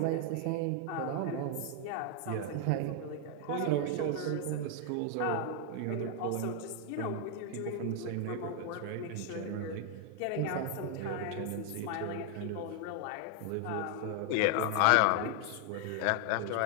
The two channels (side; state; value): both; different; correlation 0.00